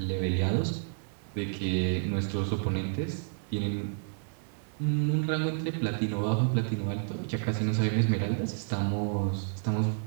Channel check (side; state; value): left; silent; 58 dB below the other